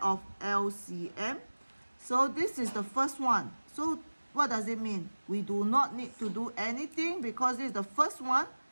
of LCM. So this is the first one. So what does it mean? We do not need to do anything because this is the first one.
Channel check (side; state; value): both; inverted; correlation -1.00